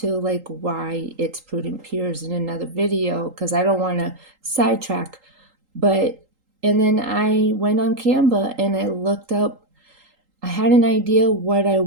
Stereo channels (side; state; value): left; late; 3.8 ms